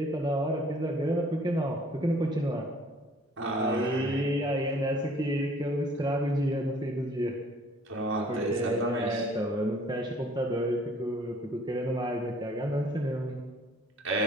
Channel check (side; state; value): both; normal; correlation 0.56